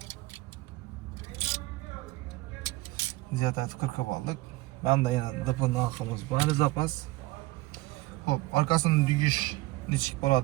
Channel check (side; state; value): left; quieter; 19.7 dB